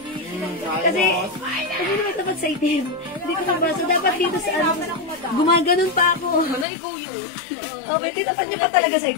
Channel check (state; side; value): drops out; right; at 6.7 s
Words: Kasi naman tapat sa itim. Hindi ko mabasa. Dapat dito sa gumaganon pa ako. Okay, tinapat niya pa talaga sa